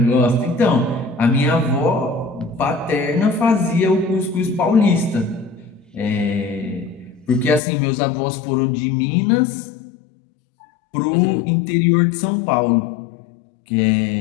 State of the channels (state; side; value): drops out; right; at 7.6 s